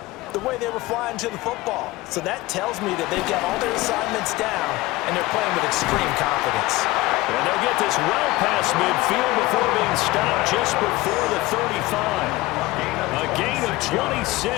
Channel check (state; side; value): quieter; right; 19.5 dB